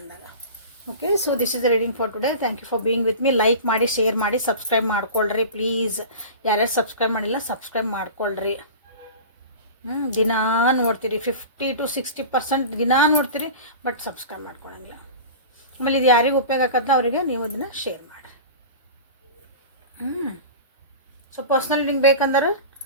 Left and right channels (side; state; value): both; inverted; correlation -0.34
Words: Okay, so this is the reading for today. Thank you for being with me. Like ಮಾಡಿ, ಶೇರ್ ಮಾಡಿ, ಸಬ್ಸ್ಕ್ರೈಬ್ ಮಾಡ್ಕೊಳ್ರಿ ಪ್ಲೀಸ್. ಯಾರ್ಯಾರು ಸಬ್ಸ್ಕ್ರೈಬ್ ಮಾಡಿಲ್ಲ ಸಬ್ಸ್ಕ್ರೈಬ್ ಮಾಡ್ಕೊಳ್ರಿ. ದಿನಾ ನೋಡ್ತೀರಿ, 50 to 60% ದಿನಾ ನೋಡ್ತೀರಿ, ಬಟ್ ಸಬ್ಸ್ಕ್ರೈಬ್ ಮಾಡ್ಕೊಳಂಗಿಲ್ಲ. ಆಮೇಲೆ ಇದು ಯಾರಿಗೆ ಉಪಯೋಗ ಆಗತ್ತ ಅವರಿಗೆ ನೀವು ಅದನ್ನು ಶೇರ್ ಮಾಡಿ. ಸೊ ಪರ್ಸ್ನಲ್ ಲಿಂಕ್ ಬೇಕಂದ್ರೆ